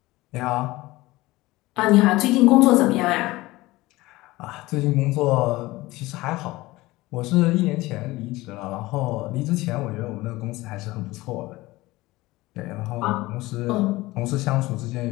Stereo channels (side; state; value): right; quieter; 19.5 dB